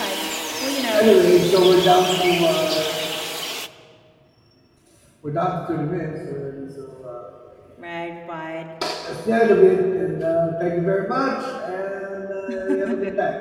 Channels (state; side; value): identical; both; correlation 1.00